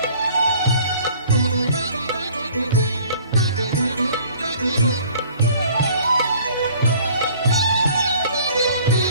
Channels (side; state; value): both; inverted; correlation -0.53